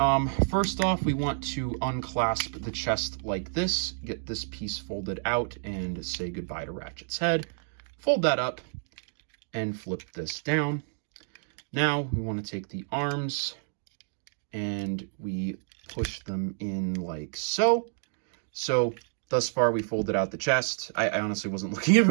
First off, we want to unclasp the chest like this, get this piece folded out, and say goodbye to Ratchet's head. Fold that up and flip this down. Now we want to take the arms and we push them in like so. So thus far we folded out the chest. I honestly wasn't looking if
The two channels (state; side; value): silent; left; digital silence